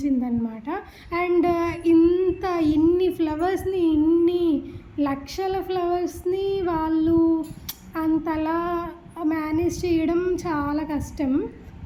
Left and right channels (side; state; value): both; identical; correlation 1.00